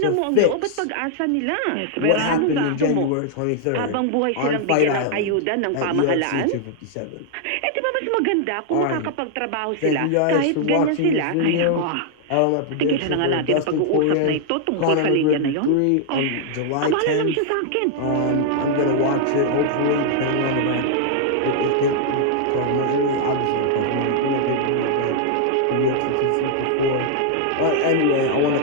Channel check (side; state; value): both; different; correlation -0.01